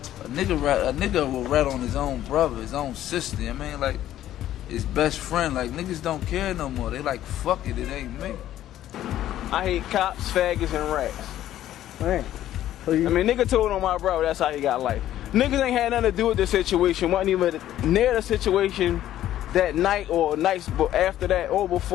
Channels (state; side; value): quieter; right; 12.6 dB